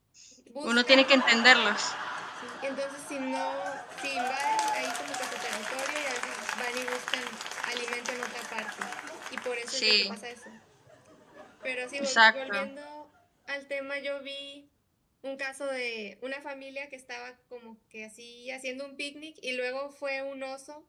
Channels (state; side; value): identical; both; correlation 1.00